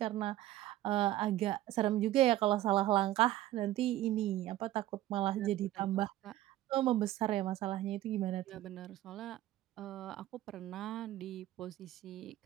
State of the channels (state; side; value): quieter; left; 14.8 dB